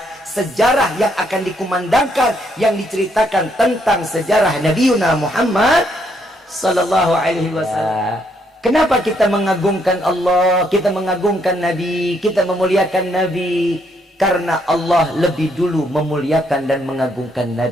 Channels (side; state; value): both; normal; correlation 0.73